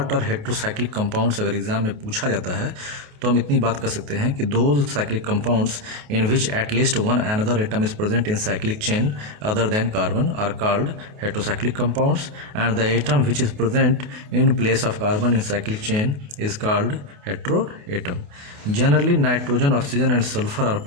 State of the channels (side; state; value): left; late; 28 ms